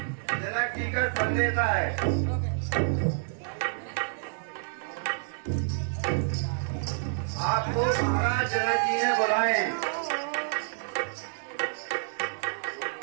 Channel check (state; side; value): silent; left; digital silence